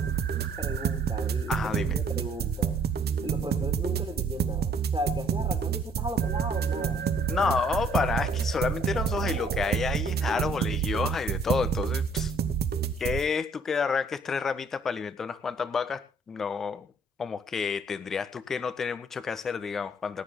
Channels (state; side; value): normal; both; correlation 0.62